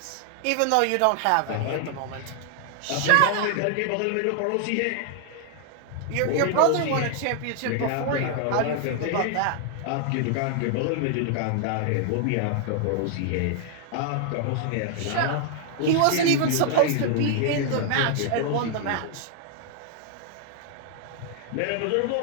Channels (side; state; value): both; different; correlation 0.00